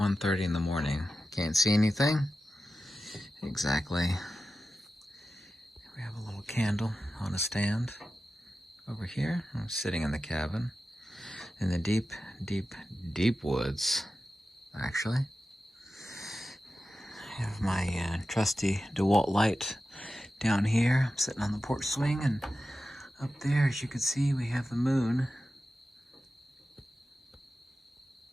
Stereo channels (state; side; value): normal; both; correlation 0.92